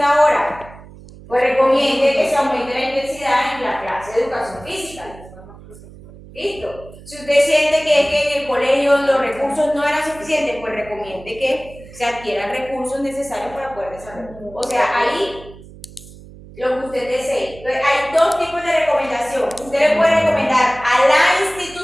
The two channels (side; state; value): right; noise; hum, 19 dB below the sound